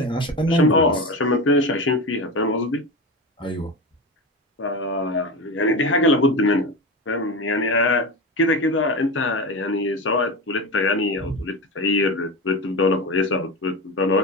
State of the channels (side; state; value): both; normal; correlation 0.23